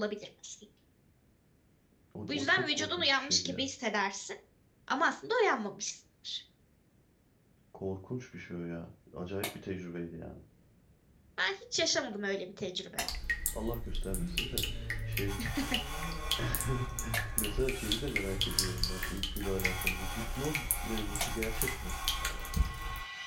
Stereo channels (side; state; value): both; identical; correlation 1.00